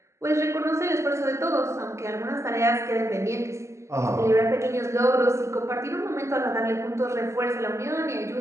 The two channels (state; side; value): late; left; 0.14 ms